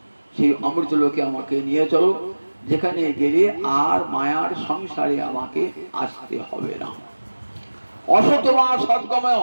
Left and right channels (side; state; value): both; inverted; correlation -1.00